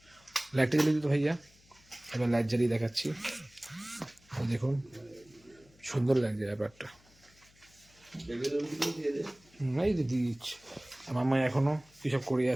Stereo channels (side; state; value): left; noise; hum, 29 dB below the sound